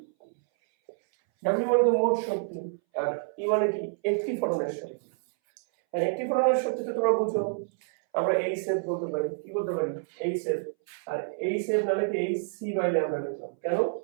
ডাব্লিউ মানে তো মোট শক্তি, আর ই মানে কি, একটি ফোটনের শক্তি। আর একটি ফোটনের শক্তি তো তোমরা বুঝো, আমরা এই সেভ বলতে পারি, কি বলতে পারি, এই সেভ। আর এই সেভ না লিখে এই সি বাই ল্যামডা লিখলাম, কেন?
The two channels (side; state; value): left; silent; 59 dB below the other